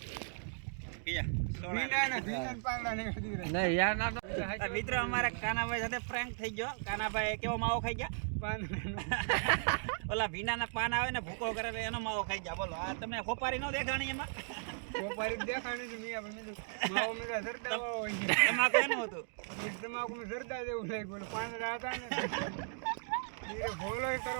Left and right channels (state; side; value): silent; left; digital silence